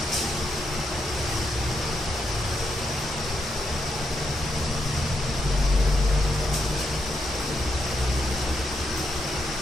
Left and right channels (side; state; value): both; normal; correlation 0.81